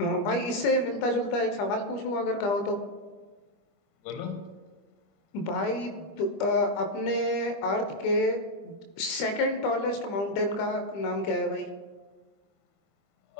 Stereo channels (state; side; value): late; right; 25 ms